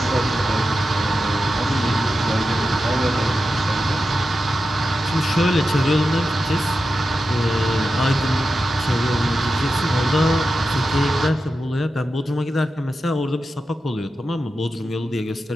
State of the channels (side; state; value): both; normal; correlation 0.91